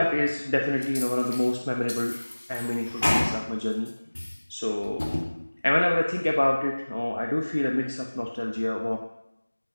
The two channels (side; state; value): both; inverted; correlation -1.00